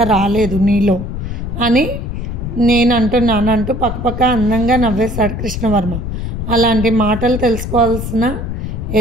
రాలేదు నీలో అని నేను అంటున్నాను అంటూ పక్కపక్క అందంగా నవ్వేశాడు కృష్ణవర్మ. అలాంటి మాటలు తెలుసుకోవాల్సిన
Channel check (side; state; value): left; noise; rumble, 5 dB below the sound